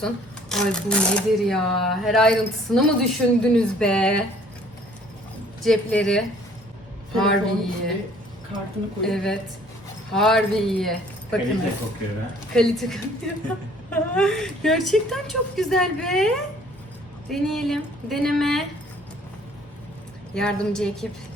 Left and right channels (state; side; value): normal; both; correlation 0.57